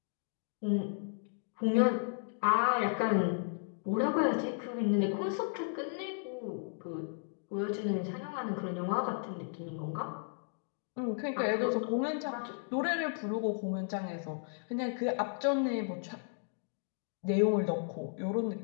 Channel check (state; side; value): silent; right; digital silence